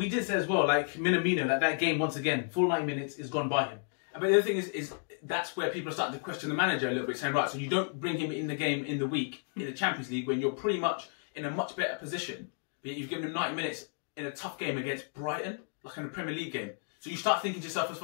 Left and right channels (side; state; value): right; silent; 56 dB below the other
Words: did say as well, like Minamino, that game once again, full 90 minutes is gone by him. But the other thing is that's where people are starting to question the manager a little bit, saying, right, so you don't bring him in the game in the week in the Champions League when you're pretty much in a much better position, but you've given him 90 minutes in a tough game against Brighton, like in a Premier League game. So you start thinking to yourself, as